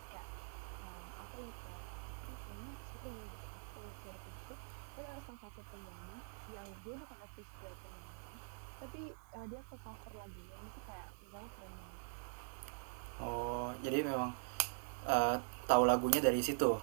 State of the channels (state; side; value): silent; left; digital silence